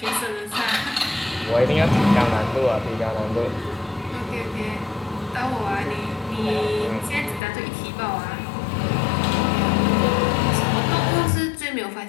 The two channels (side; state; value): right; drops out; at 7.4 s